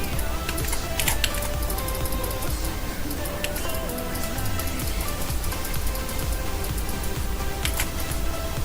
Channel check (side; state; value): both; identical; correlation 1.00